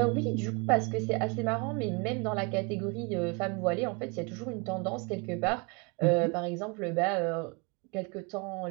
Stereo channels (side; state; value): left; quieter; 30.7 dB